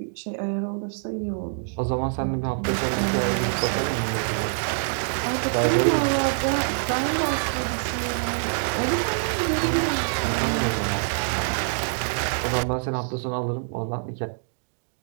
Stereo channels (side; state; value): left; silent; digital silence